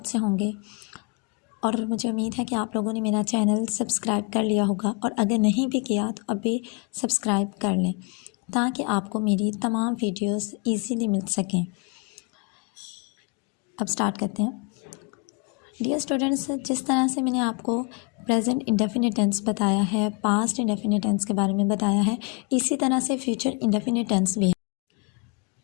से होंगे और मुझे उम्मीद है कि आप लोगों ने मेरा चैनल सब्सक्राइब कर लिया होगा और अगर नहीं भी किया तो अभी सब्सक्राइब कर लें ताकि आपको मेरी तमाम वीडियोस इजीली मिल सकें। अब स्टार्ट करते हैं। डियर स्टूडेंट्स, जिस तरह से मैंने आपको प्रेजेंट इंडेफिनिट टेंस बताया है, पास्ट इंडेफिनिट टेंस के बारे में बताया है, इसी तरह से फ्यूचर इंडेफिनिट टेंस भी है।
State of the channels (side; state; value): right; quieter; 31.1 dB